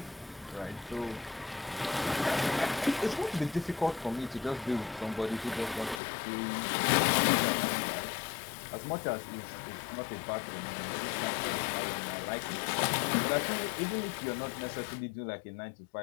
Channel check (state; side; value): drops out; right; at 6.0 s